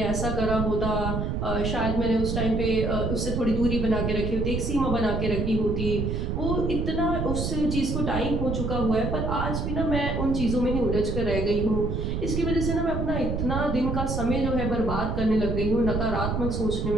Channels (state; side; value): noise; right; rumble, 1 dB below the sound